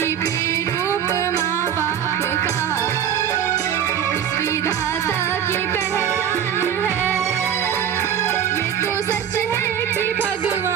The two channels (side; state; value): left; quieter; 9.1 dB